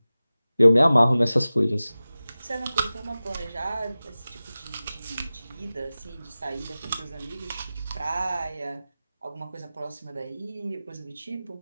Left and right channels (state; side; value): inverted; both; correlation -0.97